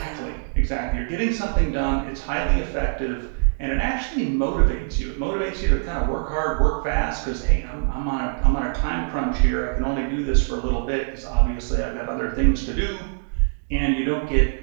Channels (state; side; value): silent; left; 63 dB below the other